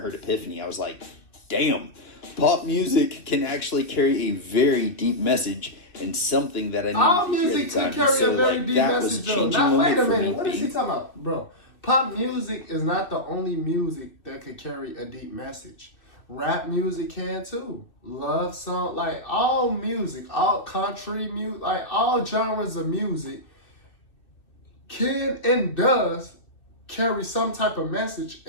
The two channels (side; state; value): right; late; 2.4 ms